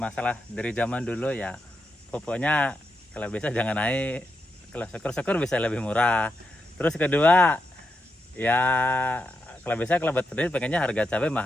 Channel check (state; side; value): normal; both; correlation 0.85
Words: dari zaman dulu ya pupuknya kalau bisa jangan naik, kalau syukur-syukur bisa lebih murah. Terus kedua ya kalau bisa kalau buat petani pengennya harga cabai